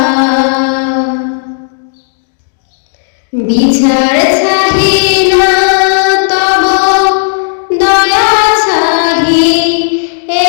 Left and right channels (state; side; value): silent; right; digital silence